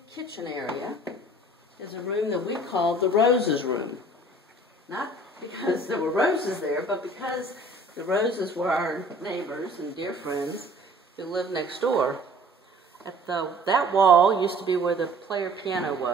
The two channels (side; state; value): both; normal; correlation 0.50